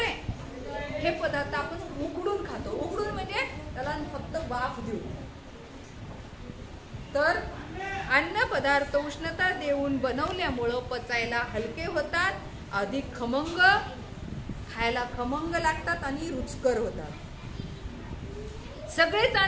हे पदार्थ आपण उकडून खातो. उकडून म्हणजे त्याला फक्त वाफ देऊ. तर अन्न पदार्थ उष्णता देऊन बनवल्यामुळं पचायला हलके होतात, अधिक खमंग, खायला खमंग लागतात आणि रुचकर होतात. सगळेच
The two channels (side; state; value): both; identical; correlation 1.00